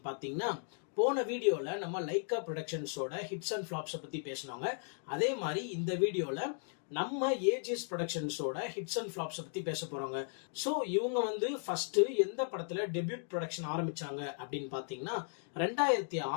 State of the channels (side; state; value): right; silent; 54 dB below the other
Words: பாத்தீங்கன்னா, போன வீடியோல நம்ம லைக்கா ப்ரொடக்ஷன்ஸோட ஹிட்ஸ் அண்ட் ஃபிளாப்ஸ் பத்தி பேசணுங்க. அதே மாதிரி இந்த வீடியோல நம்ம ஏஜிஎஸ் ப்ரொடக்ஷன்ஸோட ஹிட்ஸ் அண்ட் ஃபிளாப்ஸ் பத்தி பேச போறோங்க. சோ இவங்க ஃபர்ஸ்ட் எந்த படத்துல டெபியூட் ப்ரொடக்ஷன் ஆரம்பிச்சாங்க அப்படின்னு பாத்தீங்கன்னா